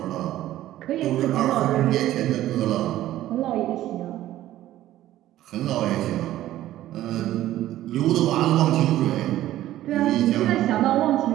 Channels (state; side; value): quieter; left; 14.0 dB